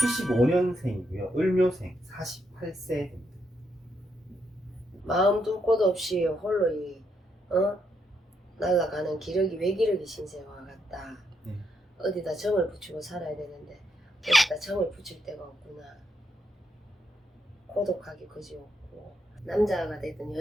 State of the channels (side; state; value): both; normal; correlation 0.79